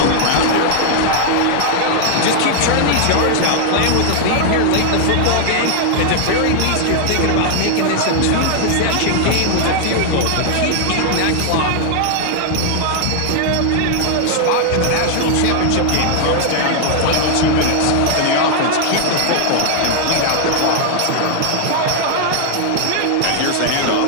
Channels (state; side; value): different; both; correlation 0.00